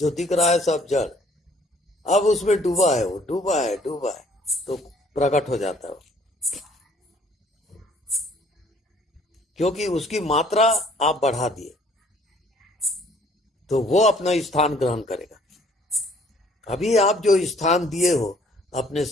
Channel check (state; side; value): normal; both; correlation 0.59